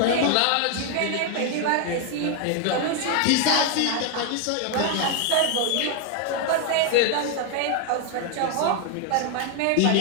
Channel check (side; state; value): both; different; correlation 0.00